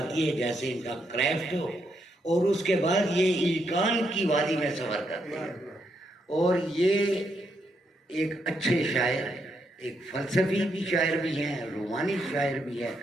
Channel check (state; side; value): normal; both; correlation 0.79